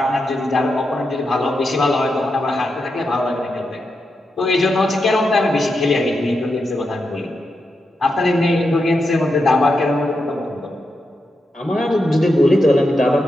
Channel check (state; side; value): normal; both; correlation 0.86